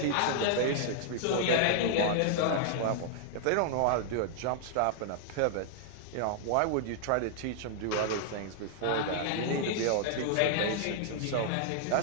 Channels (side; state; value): both; different; correlation -0.01